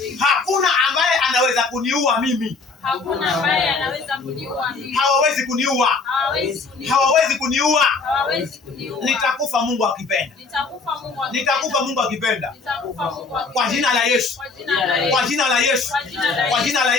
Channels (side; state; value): right; quieter; 4.3 dB